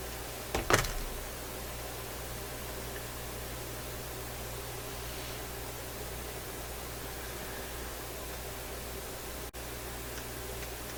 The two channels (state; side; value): identical; both; correlation 1.00